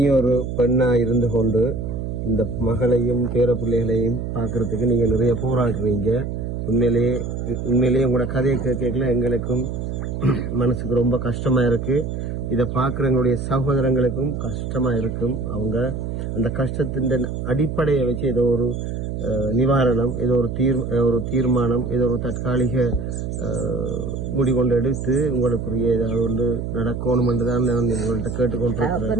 பெண்ணா இருந்து கொண்டு இந்த மகளையும் பேர பிள்ளைகளையும் பார்க்கறதுக்கு நீங்க நிறைய போராடுறீங்க. உண்மையிலேயே உங்களோட கதையை கேட்கல எங்களுக்கும் மனசுக்கு ரொம்ப கஷ்டமா இருக்கு. இதை பார்க்குறவங்களுடைய சகோதரங்களுக்கும் கஷ்டமா இருக்கும். அவங்க அந்த கஷ்டத்தின் அடிப்படையை வச்சு ஏதோ ஒரு நிவாரணம், ஏதோ ஒரு தீர்மானம், ஏதோ ஒரு தற்காலிக முடிகொண்டு எடுத்து உங்களுக்குரிய ஏதாவது ஒன்று நடக்கணும் என்றுதான் நான் உங்கள்கிட்ட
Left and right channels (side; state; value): right; noise; hum, 4 dB below the sound